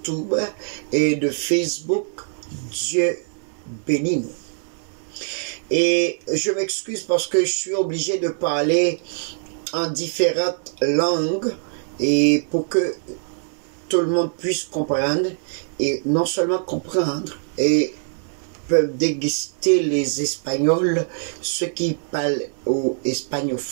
et de Facebook. Dieu bénit nous. Et je m'excuse parce que je suis obligé de parler en différentes langues. Et pour que tout le monde puisse comprendre. Et non seulement comprendre. Et peuvent déguster les Espagnols, ceux qui parlent aux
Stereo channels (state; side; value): silent; left; 59 dB below the other